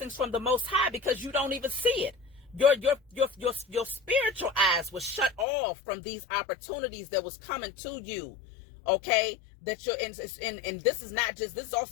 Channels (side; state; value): right; drops out; at 5.5 s